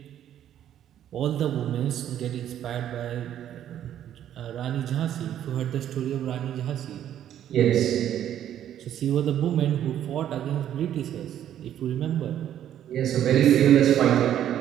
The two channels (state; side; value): quieter; left; 10.8 dB